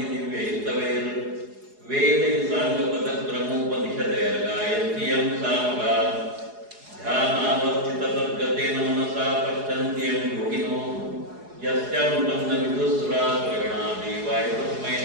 दिव्यैस्तवैर् वेदैः साङ्गपदक्रमोपनिषदैर्गायन्ति यं सामगा ध्यानावस्थिततद्गतेन मनसा पश्यन्ति यं योगिनो यस्यान्तं न विदुस्सुरासुरगणा देवाय तस्मै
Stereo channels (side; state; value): left; late; 4.8 ms